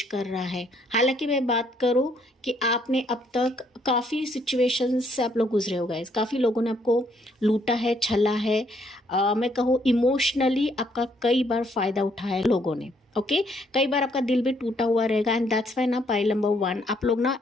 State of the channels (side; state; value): both; normal; correlation 0.69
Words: कर रहा है। हालांकि मैं बात करूं कि आपने अब तक काफ़ी सिचुएशंस से आप लोग गुजरे हो गाइस, काफ़ी लोगों ने आपको लूटा है, छला है, मैं कहूँ इमोशनली आपका कई बार फ़ायदा उठाया है लोगों ने। ओके, कई बार आपका दिल भी टूटा हुआ रहेगा, एंड दैट्स वाई ना पाइल नंबर 1, आप लोग ना